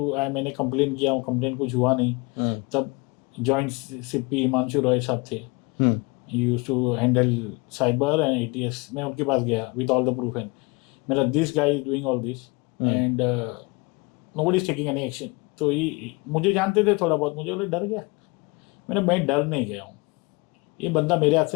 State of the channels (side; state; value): right; quieter; 27.1 dB